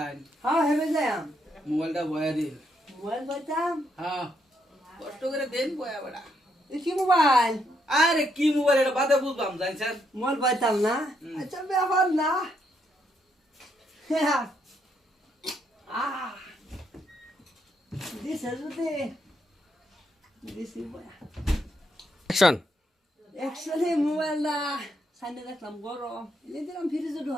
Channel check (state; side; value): normal; both; correlation 0.76